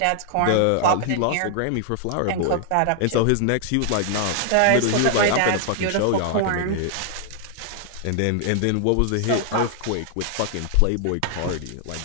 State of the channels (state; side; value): different; both; correlation 0.00